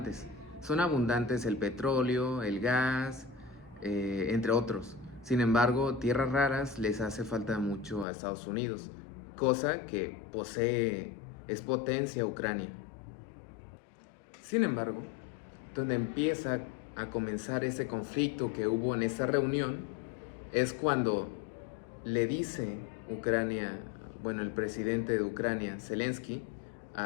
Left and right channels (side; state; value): right; drops out; at 8.1 s